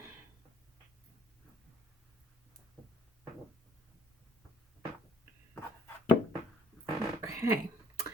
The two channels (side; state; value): both; normal; correlation 0.60